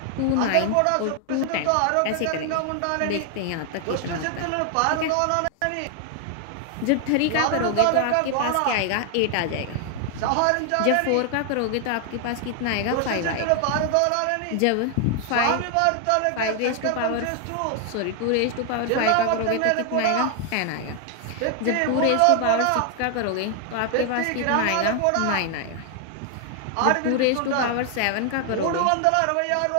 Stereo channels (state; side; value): different; both; correlation 0.00